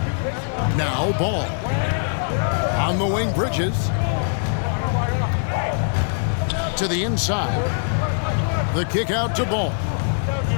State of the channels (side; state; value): right; silent; digital silence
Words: Now Ball. On the wing, Bridges. To the inside. The kick out to Ball.